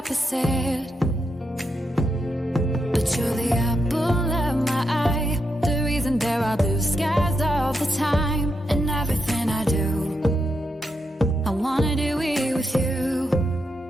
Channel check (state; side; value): normal; both; correlation 0.83